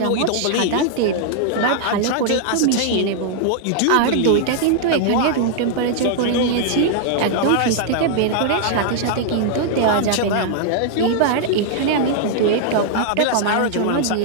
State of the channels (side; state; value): both; different; correlation -0.01